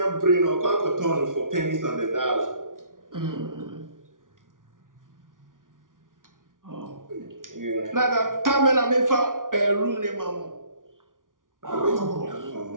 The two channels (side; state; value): left; late; 0.89 ms